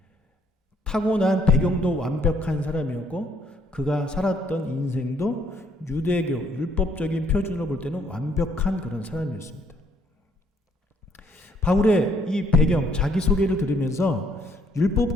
타고난 배경도 완벽한 사람이었고 그가 살았던 인생도 유대교 율법적인 표준으로 볼 때는 완벽한 그런 사람이었습니다. 바울의 이 배경, 자기소개를 들으면서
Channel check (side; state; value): both; normal; correlation 0.67